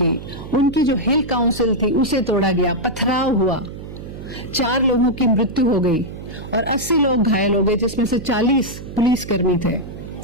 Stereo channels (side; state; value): right; noise; hum, 12 dB below the sound